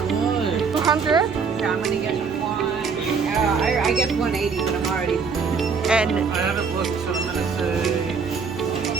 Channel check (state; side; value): quieter; left; 5.5 dB